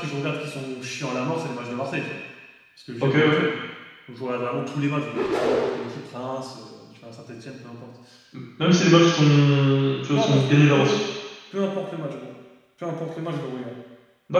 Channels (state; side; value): identical; both; correlation 1.00